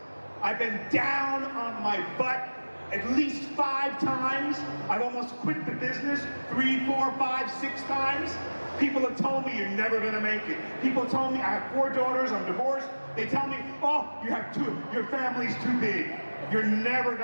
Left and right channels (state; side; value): inverted; both; correlation -1.00